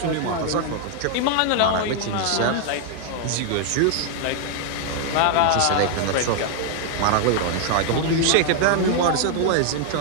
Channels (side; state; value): both; different; correlation 0.00